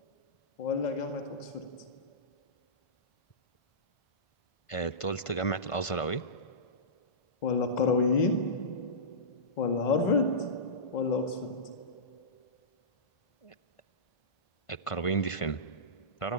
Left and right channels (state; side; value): late; right; 1.5 ms